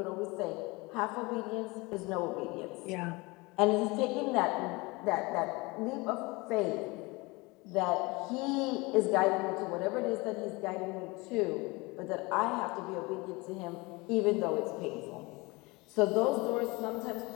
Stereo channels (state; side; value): quieter; right; 24.6 dB